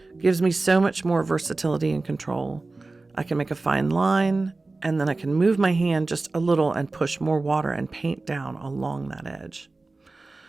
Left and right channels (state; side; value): quieter; left; 3.4 dB